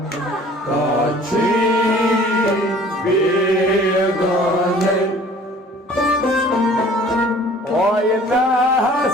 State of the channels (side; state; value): both; normal; correlation 0.50